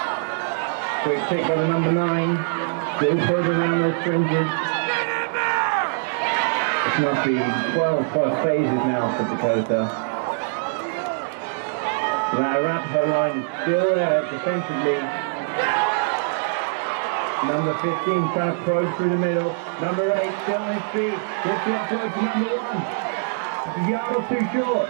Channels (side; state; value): left; silent; digital silence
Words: Quick pick by the number 9, still further around those fringes. This must be 12 plus phases now for Dakota. That Arapahoe line is still there defensively. Number 15 trying to probe through the middle. Number 8 still on his feet. Gets the offload to number 1. It's a yard or two short.